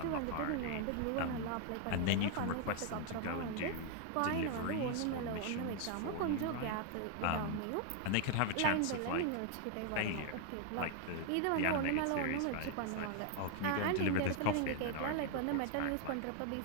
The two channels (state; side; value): different; both; correlation 0.00